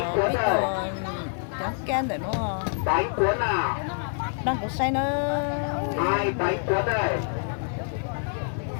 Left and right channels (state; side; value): silent; right; 61 dB below the other